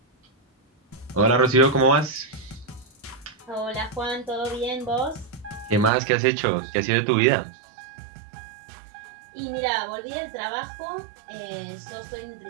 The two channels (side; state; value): left; drops out; at 5.9 s